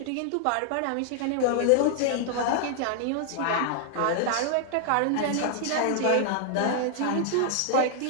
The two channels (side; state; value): both; different; correlation 0.00